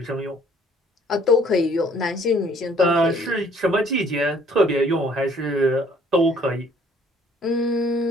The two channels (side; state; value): both; normal; correlation 0.59